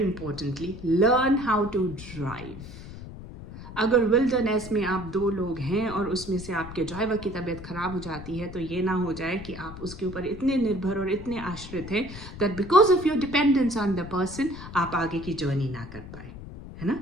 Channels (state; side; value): noise; left; rumble, 13 dB below the sound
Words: learn how to drive. अगर विल्डरनेस में आप 2 लोग हैं और उसमें से आपके ड्राइवर की तबीयत खराब हो जाती है, तो ये ना हो जाए कि आप उसके ऊपर इतने निर्भर और इतने आश्रित हैं that because of your dependence on the person आप आगे की जर्नी ना कर पाए, है